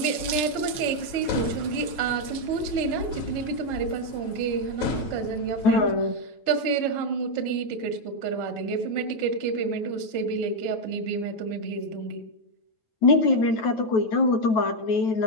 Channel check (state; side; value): late; right; 9.2 ms